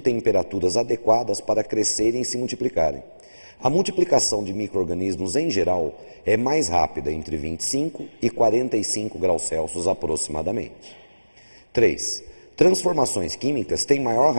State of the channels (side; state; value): both; inverted; correlation -1.00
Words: temperaturas adequadas para crescerem e se multiplicarem. A multiplicação de micro-organismos, em geral, é mais rápida, entre 25 e 45 graus Celsius aproximadamente. 3. Transformações químicas têm maior